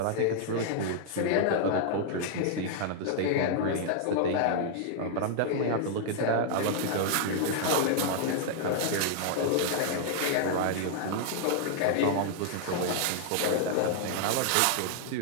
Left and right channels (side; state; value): both; different; correlation -0.01